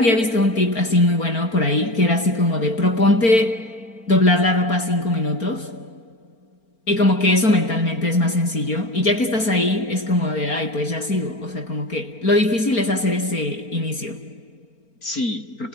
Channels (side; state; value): right; late; 4.4 ms